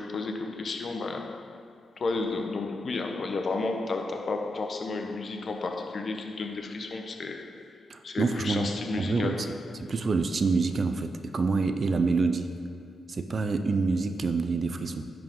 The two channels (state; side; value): normal; both; correlation 0.85